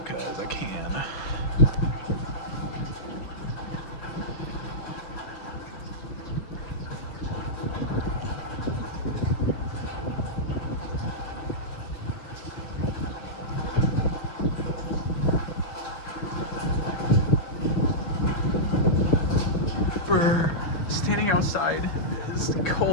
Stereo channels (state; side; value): late; right; 6.4 ms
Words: I can. Standing outside is